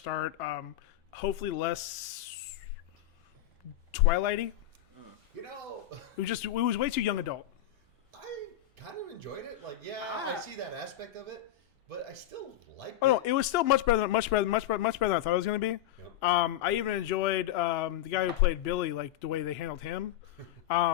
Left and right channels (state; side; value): quieter; right; 12.4 dB